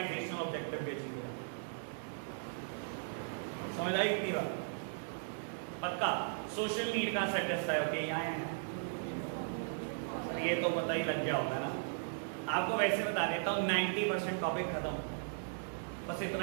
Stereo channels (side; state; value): left; silent; digital silence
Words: ऑब्जेक्टिव भी अचीव हो जाता है। समझ आई इतनी बात? पक्का सोशल नीड का सेटिस्फाई होती है, यहाँ है ये तो पता ही लग गया होगा ना। आपको वैसे बता देता हूँ 90% टॉपिक खत्म, बस